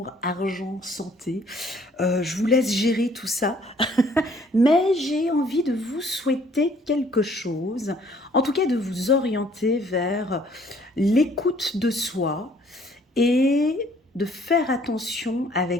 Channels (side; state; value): both; normal; correlation 0.60